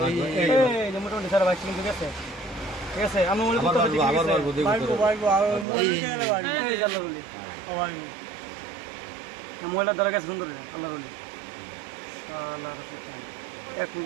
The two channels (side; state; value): left; drops out; at 5.7 s